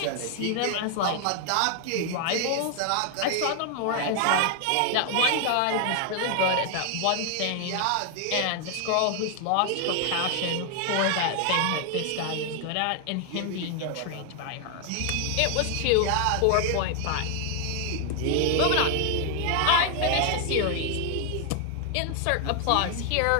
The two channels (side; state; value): both; different; correlation 0.00